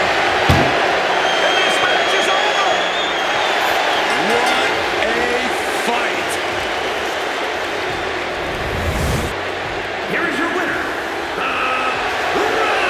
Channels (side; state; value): both; identical; correlation 1.00